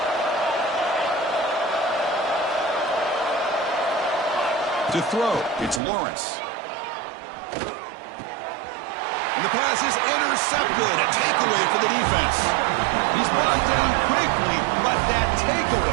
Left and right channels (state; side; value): drops out; left; at 5.8 s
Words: To throw, it's Lawrence. And the pass is intercepted. A takeaway for the defense. He's brought down quickly, but that